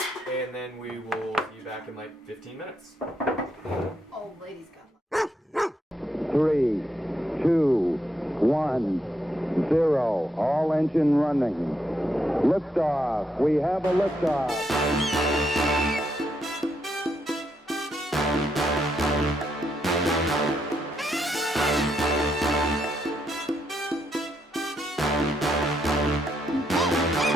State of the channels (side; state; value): both; normal; correlation 0.78